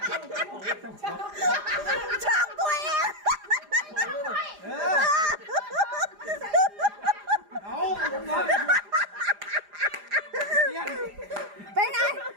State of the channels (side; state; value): left; late; 4.9 ms